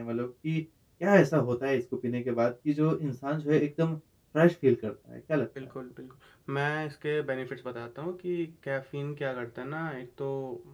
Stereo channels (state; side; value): identical; both; correlation 1.00